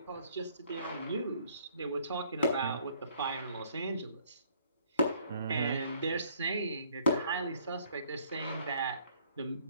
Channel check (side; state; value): both; inverted; correlation -0.62